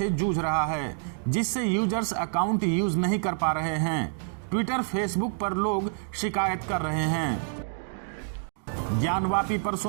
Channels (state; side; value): silent; left; digital silence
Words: जूझ रहा है, जिससे यूजर्स अकाउंट यूज नहीं कर पा रहे हैं। ट्विटर, फेसबुक पर लोग शिकायत कर रहे हैं। ज्ञानवापी पर